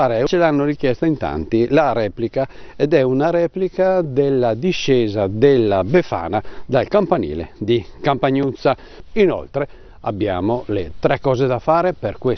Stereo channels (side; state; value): both; identical; correlation 1.00